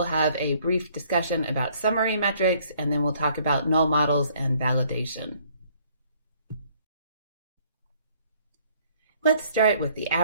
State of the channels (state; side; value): inverted; both; correlation -0.61